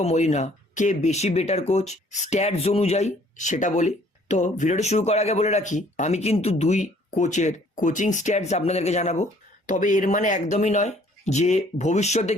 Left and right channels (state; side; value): normal; both; correlation 0.59